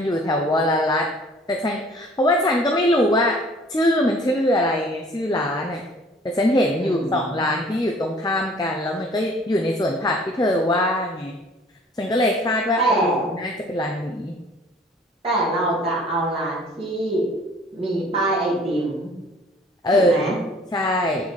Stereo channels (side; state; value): both; normal; correlation 0.52